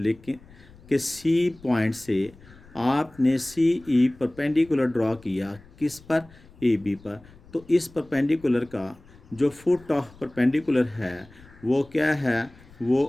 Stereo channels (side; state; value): left; noise; rumble, 24 dB below the sound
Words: कि सी पॉइंट से आपने सी ई परपेंडिकुलर ड्रॉ किया किस पर, ए बी पर। तो इस परपेंडिकुलर का जो फुट ऑफ परपेंडिकुलर है वो क्या है, वो